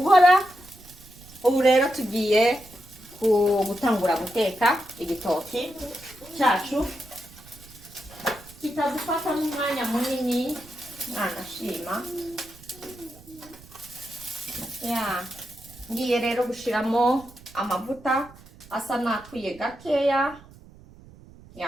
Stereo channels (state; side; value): noise; right; rumble, 22 dB below the sound